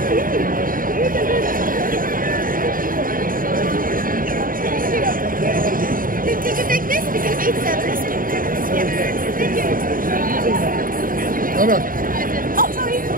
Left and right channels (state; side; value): late; left; 0.41 ms